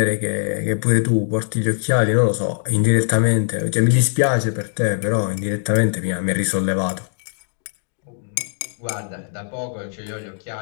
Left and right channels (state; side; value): silent; right; digital silence